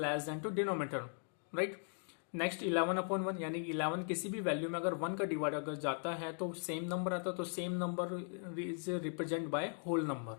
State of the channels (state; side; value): silent; right; 52 dB below the other